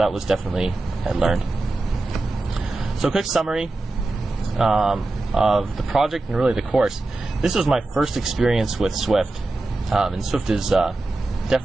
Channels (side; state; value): left; quieter; 3.0 dB